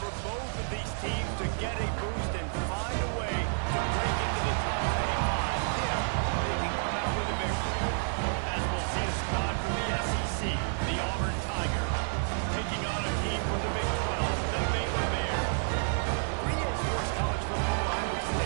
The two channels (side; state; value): left; silent; 58 dB below the other